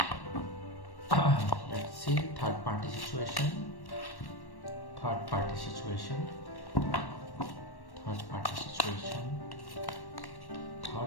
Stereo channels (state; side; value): late; right; 1.1 ms